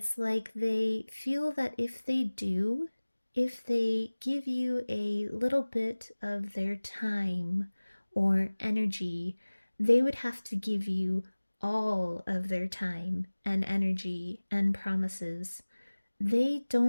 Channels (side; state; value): both; inverted; correlation -1.00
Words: like they feel that if they give you a little bit of their time or energy, they would have to give you all of their time and energy and promises. They